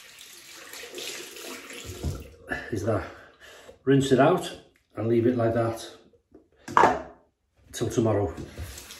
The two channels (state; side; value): identical; both; correlation 1.00